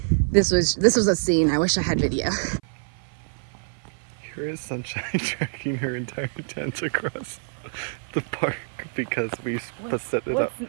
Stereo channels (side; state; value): left; silent; 58 dB below the other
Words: this was a scene. I wish I had video. Here is Sunshine dragging her entire tent across the park because we set it up.